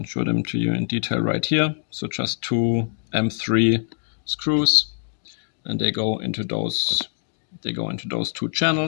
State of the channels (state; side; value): silent; right; digital silence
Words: show them to you in detail right here. So just 2 M3 screws, and they go into those 2